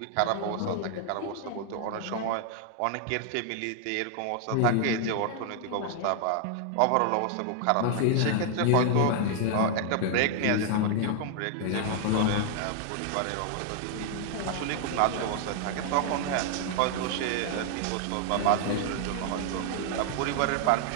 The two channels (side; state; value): both; different; correlation 0.00